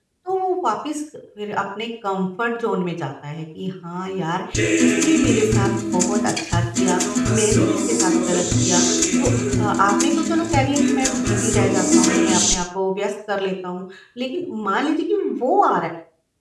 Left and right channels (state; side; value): identical; both; correlation 1.00